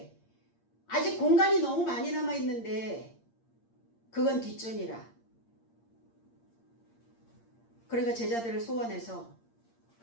아직 공간이 너무 많이 남아있는데 그건 뒷전이라. 그러니까 제자들을 소환해서,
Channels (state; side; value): late; right; 8.7 ms